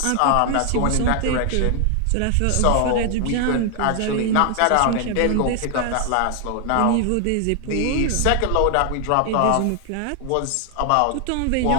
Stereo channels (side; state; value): both; different; correlation 0.00